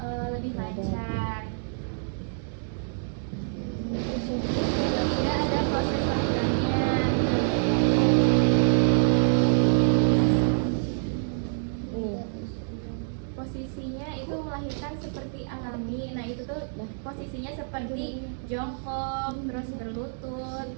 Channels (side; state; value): left; silent; digital silence